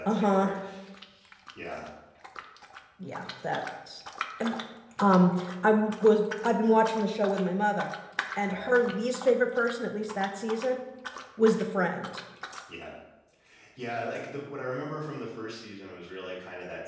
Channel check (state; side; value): identical; both; correlation 1.00